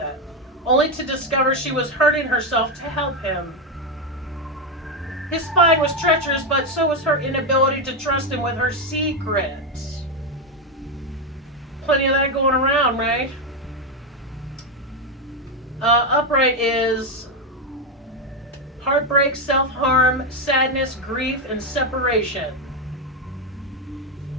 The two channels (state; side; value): normal; both; correlation 0.07